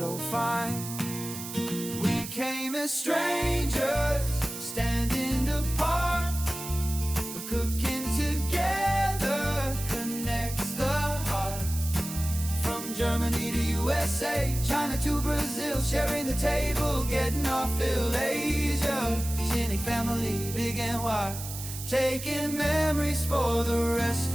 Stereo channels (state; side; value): noise; right; hiss, 9 dB below the sound